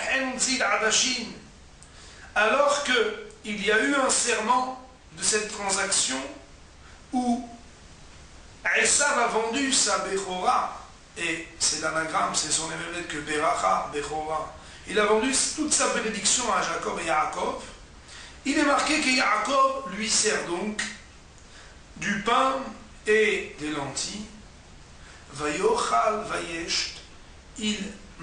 zid adashin. Alors qu'il y a eu un serment de cette transaction où Esav a vendu sa Bechora, et c'est l'anagramme, c'est son émerveille que Beracha, Bechora. Il a vendu toute sa bénédiction à Jacob et Yaakov. Il est marqué que Yaakov lui sert donc du pain et des lentilles. Vayochal vayesht, il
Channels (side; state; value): both; identical; correlation 1.00